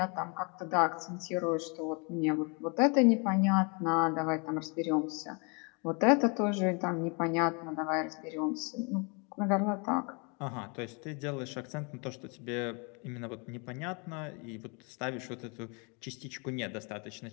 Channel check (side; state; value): right; quieter; 33.0 dB